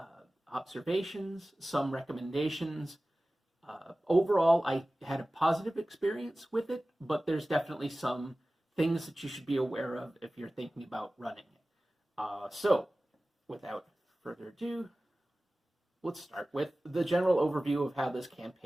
observations, some recommendations. Overall, I had a positive experience with it, but there's definitely some things that you should be aware of if you're thinking about running it. So, without further ado, let's start with the general overview of how this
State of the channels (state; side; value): normal; both; correlation 0.97